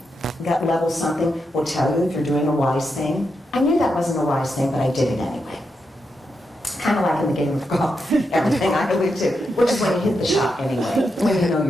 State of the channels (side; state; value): both; normal; correlation 0.84